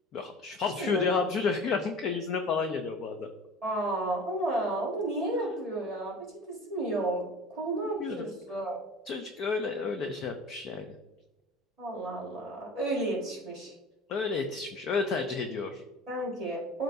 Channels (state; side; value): normal; both; correlation 0.40